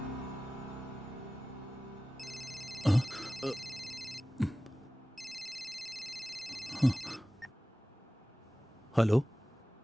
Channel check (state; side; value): normal; both; correlation 0.96